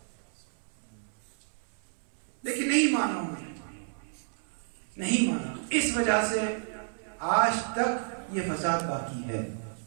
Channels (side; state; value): left; silent; 57 dB below the other